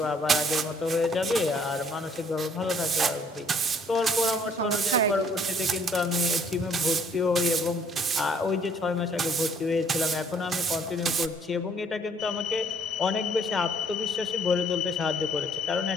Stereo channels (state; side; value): normal; both; correlation 0.61